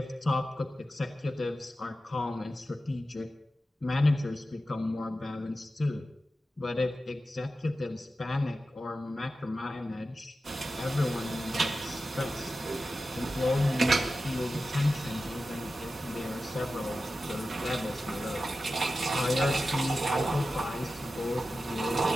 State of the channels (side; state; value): both; normal; correlation 0.93